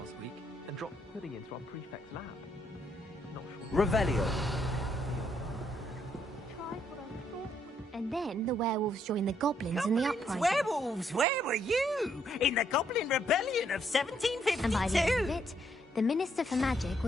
week and dropped pudding into our prefect's lab. Not sure. Revelio. Tried what I thought was And then the werewolves joined the goblins in the uprising. Werewolves, where were you? In the Goblin Rebellion of 1752? And by the end of it, the Minister for Magic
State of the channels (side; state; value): both; normal; correlation 0.72